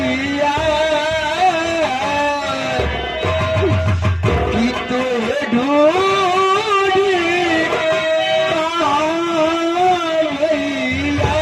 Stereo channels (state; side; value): identical; both; correlation 1.00